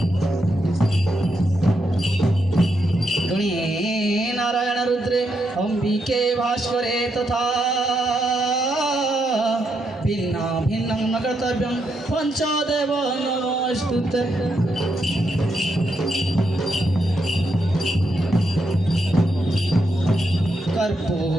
नारायण रुद्रे अंबिके भास्करे तथा भिन्ना भिन्नं न कर्तव्यं पञ्चदेव नमोस्तुते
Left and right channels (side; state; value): both; normal; correlation 0.81